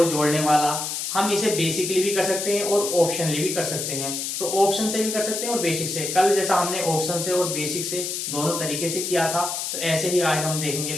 जोड़ने वाला, हम इसे बेसिकली भी कर सकते हैं और ऑप्शनली भी कर सकते हैं, तो ऑप्शन से भी कर सकते हैं और बेसिक से। कल जैसा हमने ऑप्शन से और बेसिक से दोनों तरीके से किया था, तो ऐसे ही आज हम देखेंगे,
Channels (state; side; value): noise; left; hiss, 3 dB below the sound